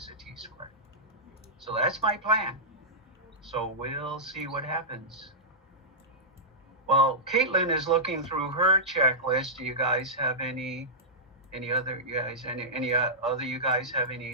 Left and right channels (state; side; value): normal; both; correlation -0.14